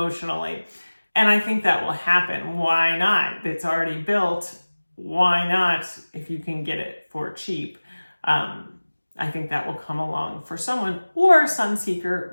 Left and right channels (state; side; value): inverted; both; correlation -1.00